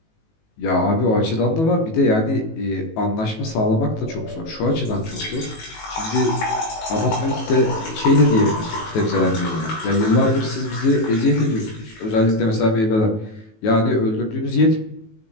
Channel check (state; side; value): late; right; 19 ms